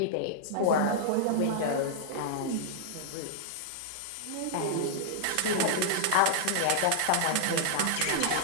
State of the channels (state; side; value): different; both; correlation -0.01